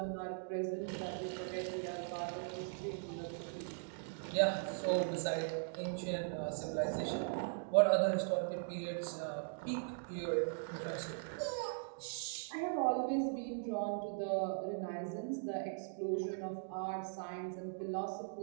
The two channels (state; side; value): silent; left; digital silence